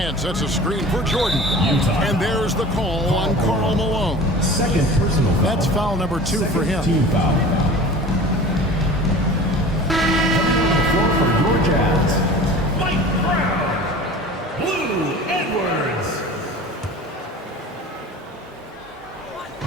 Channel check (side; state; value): both; normal; correlation 0.39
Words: sets a screen for Jordan. Utah. And there's the call on Karl Malone. Second personal foul. That's foul number 2 for him. Team foul. Coming on the floor for your Jazz, Mike Brown. Blue